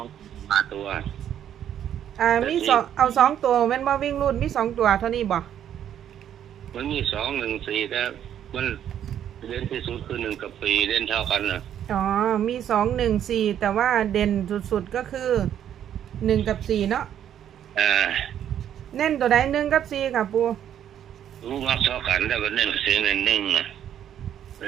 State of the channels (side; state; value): left; quieter; 10.1 dB